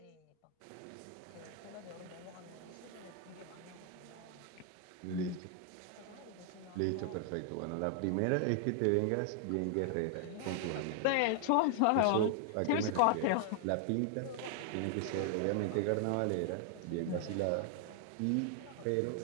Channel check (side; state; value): both; different; correlation 0.00